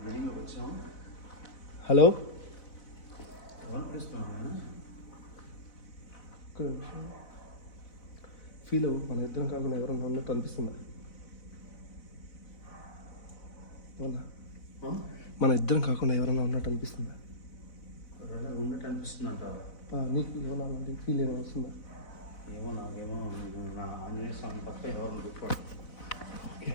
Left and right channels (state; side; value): late; right; 4.0 ms